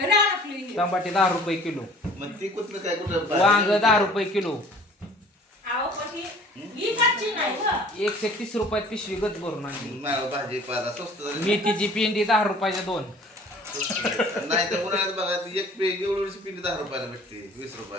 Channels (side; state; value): both; normal; correlation 0.50